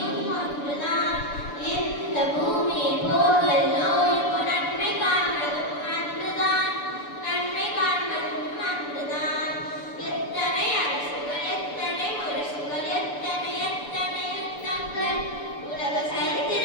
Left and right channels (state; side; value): late; right; 6.9 ms